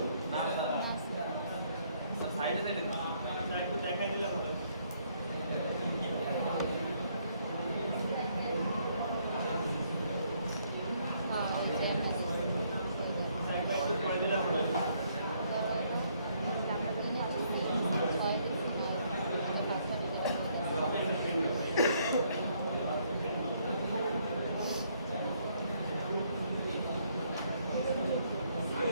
না না সব সাইডে সাইডে একটু দেখাই দিলে হবে। একটু পরে দিলে হবে।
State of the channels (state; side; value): inverted; both; correlation -0.69